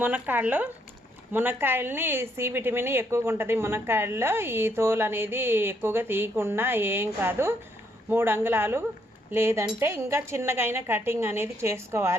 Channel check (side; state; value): both; normal; correlation 0.73